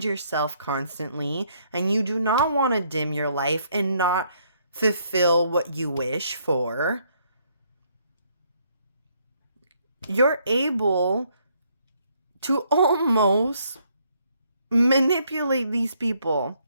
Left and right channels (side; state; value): both; inverted; correlation -0.69